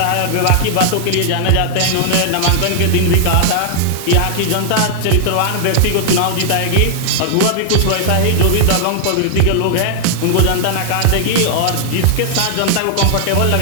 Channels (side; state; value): both; different; correlation 0.00